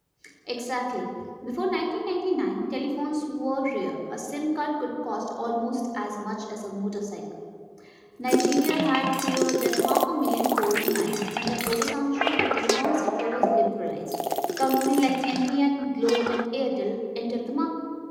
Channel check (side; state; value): both; identical; correlation 1.00